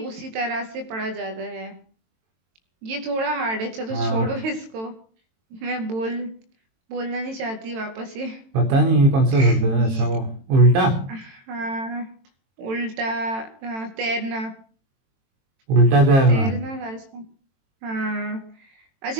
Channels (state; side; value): late; left; 22 ms